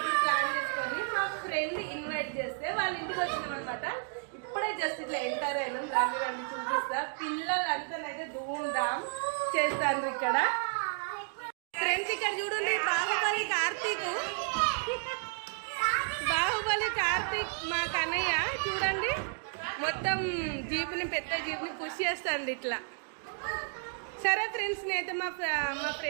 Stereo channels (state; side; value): silent; left; 56 dB below the other